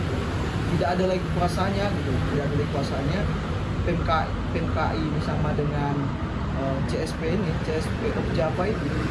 tidak ada lagi kuasanya gitu, tidak ada lagi kuasanya. PMKI ini sama dengan CSP ini, CSP of Java itu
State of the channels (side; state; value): both; identical; correlation 1.00